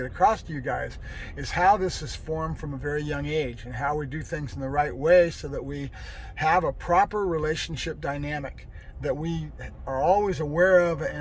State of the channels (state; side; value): identical; both; correlation 1.00